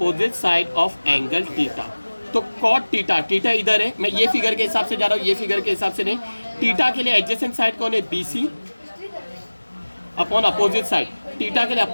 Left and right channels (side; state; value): both; inverted; correlation -1.00